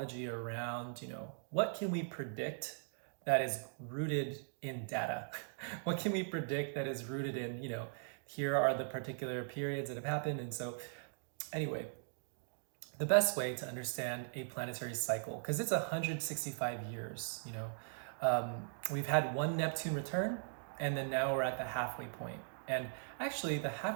around, what can we predict that is rooted in data? What can we predict that is rooted in, here are the particular periods that have happened. And so anyway, the best way to understand a planetary cycle, because it's 165 years, we've had one Neptune return, and then now we're at the halfway point. And actually the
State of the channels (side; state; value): left; silent; digital silence